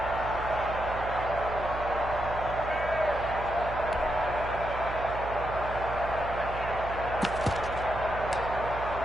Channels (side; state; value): right; noise; hum, 8 dB below the sound